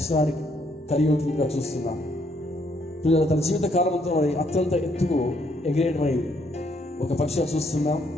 కలిగి ఉంటుందిగా చూస్తున్నాం. పిల్లలు తన జీవిత కాలంతో మరి అత్యంత ఎత్తుకు ఎగిరేటువంటి ఒక పక్షిగా చూస్తున్నాం.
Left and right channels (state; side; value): normal; both; correlation 0.70